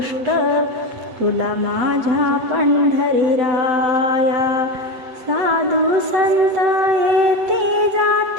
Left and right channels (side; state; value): left; late; 8.1 ms